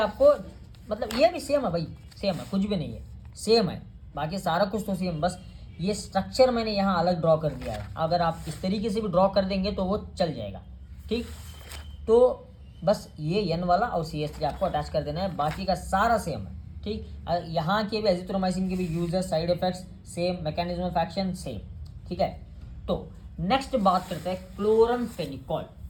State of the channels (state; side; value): identical; both; correlation 1.00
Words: मतलब ये भी सेम है भाई, सेम है, कुछ भी नहीं है, सेम है, बाकी सारा कुछ तो सेम। बस ये स्ट्रक्चर मैंने यहाँ अलग ड्रॉ कर दिया है, अगर आप इस तरीके से भी ड्रॉ कर देंगे तो वो चल जाएगा, ठीक। तो बस ये N वाला और CH3 आपको अटैच कर देना है, बाकी का सारा सेम है, ठीक। यहाँ के भी एजिथ्रोमाइसिन के भी users, side effects same, mechanism of action same, ठीक है। तो नेक्स्ट बात करते हैं क्लोरमफेनिकॉल।